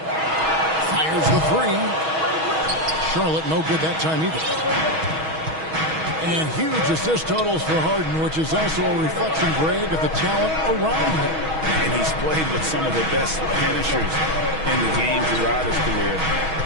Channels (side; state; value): left; late; 6.3 ms